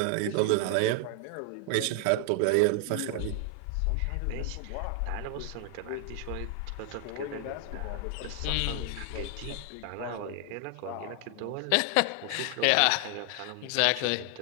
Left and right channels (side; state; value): both; different; correlation 0.00